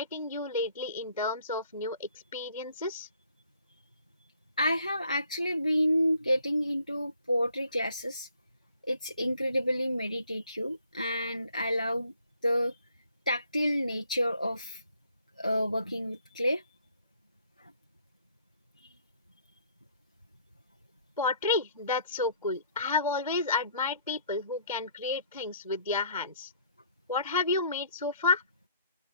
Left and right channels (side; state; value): both; inverted; correlation -0.62